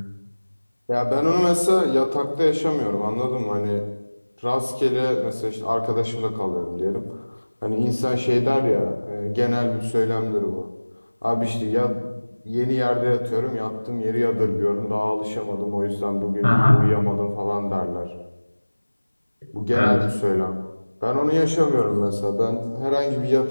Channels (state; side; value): inverted; both; correlation -1.00